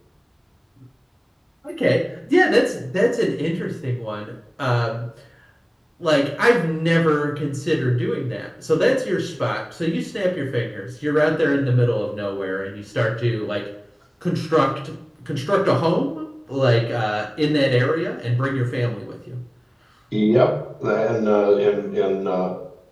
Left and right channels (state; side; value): identical; both; correlation 1.00